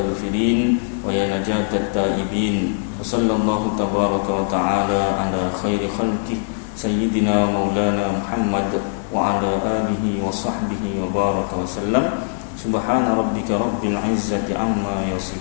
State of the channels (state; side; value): silent; right; digital silence